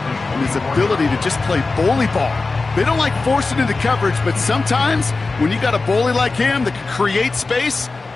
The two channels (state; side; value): quieter; right; 3.7 dB